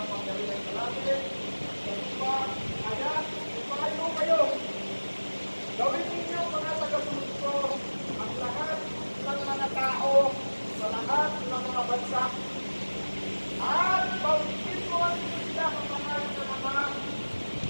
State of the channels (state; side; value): inverted; both; correlation -1.00